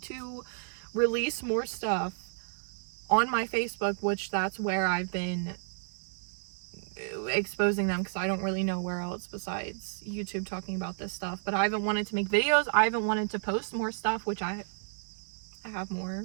to release more stuff on my Facebook, which that's where I've been exposing them, because I don't really know where else besides YouTube talking about this stuff. But I haven't wanted to make videos. I haven't wanted to post more stuff, which I have more,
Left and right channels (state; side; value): silent; left; digital silence